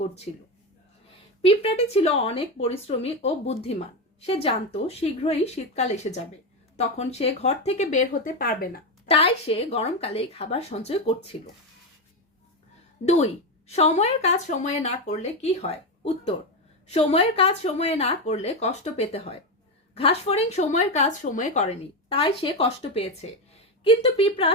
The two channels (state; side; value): normal; both; correlation 0.12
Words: করছিল। পিঁপড়াটি ছিল অনেক পরিশ্রমী ও বুদ্ধিমান। সে জানতো শীঘ্রই শীতকাল এসে যাবে, তখন সে ঘর থেকে বের হতে পারবে না, তাই সে গরমকালেই খাবার সঞ্চয় করছিল। 2, সময়ের কাজ সময়ে না করলে কি হয়? উত্তর, সময়ের কাজ সময়ে না করলে কষ্ট পেতে হয়। ঘাসফড়িং সময়ের কাজ সময়ে করেনি, তাই সে কষ্ট পেয়েছে, কিন্তু পিঁপড়া